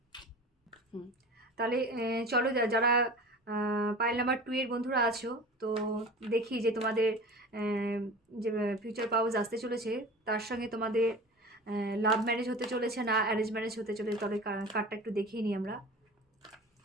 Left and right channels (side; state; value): both; normal; correlation 0.37